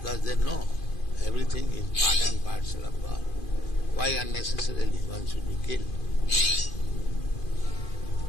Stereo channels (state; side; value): late; right; 2.5 ms